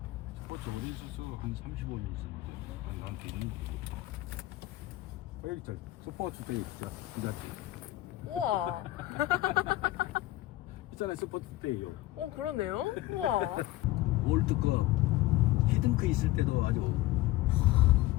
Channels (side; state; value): right; quieter; 16.8 dB